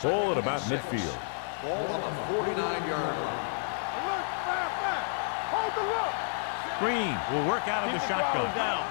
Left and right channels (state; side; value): silent; right; 58 dB below the other